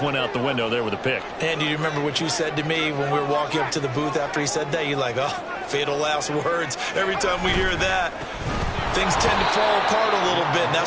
went out the window there with a pick. And do you remember what you said to me when we were walking up to the booth after he said that? You're like, oh, fatal last words. Every time we hear that, things tend to fall apart a little bit, and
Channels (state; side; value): identical; both; correlation 1.00